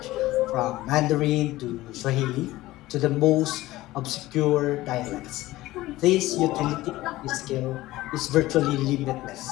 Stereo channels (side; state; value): right; quieter; 17.4 dB